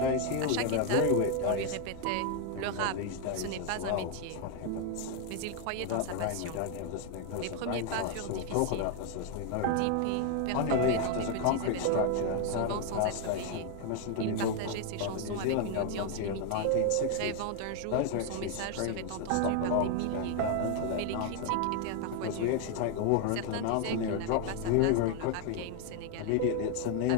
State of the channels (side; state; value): both; different; correlation 0.01